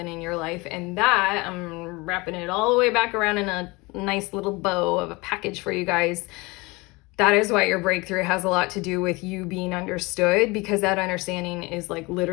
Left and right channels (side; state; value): right; quieter; 24.5 dB